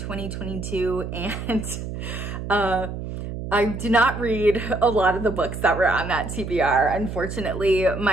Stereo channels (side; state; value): right; noise; hum, 7 dB below the sound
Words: and I did not read a lot of the books that were on that TBR. Unfortunately,